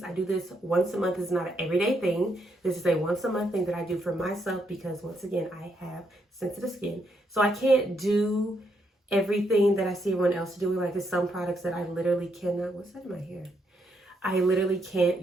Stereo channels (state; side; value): normal; both; correlation 0.77